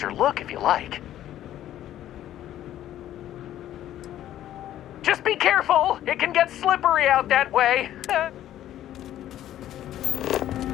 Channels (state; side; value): quieter; right; 12.4 dB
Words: look if you like. Just be careful, it can get slippery out that way.